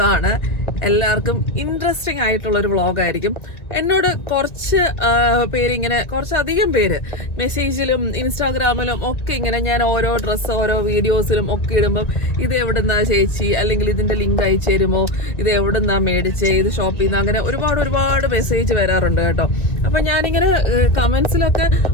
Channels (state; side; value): late; right; 1.9 ms